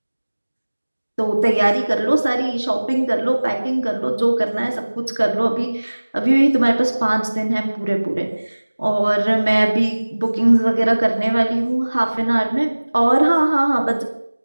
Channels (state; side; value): inverted; both; correlation -1.00